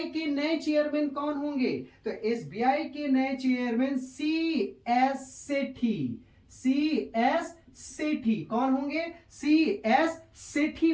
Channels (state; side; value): identical; both; correlation 1.00